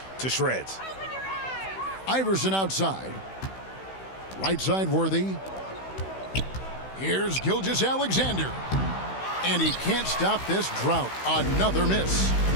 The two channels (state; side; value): late; right; 16 ms